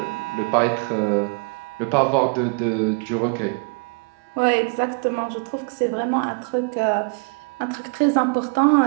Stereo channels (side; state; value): left; quieter; 35.7 dB